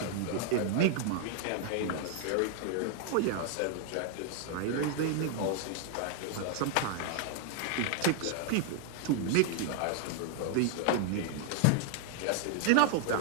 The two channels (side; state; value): both; different; correlation 0.00